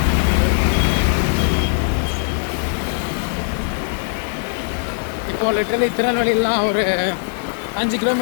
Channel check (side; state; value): right; silent; 59 dB below the other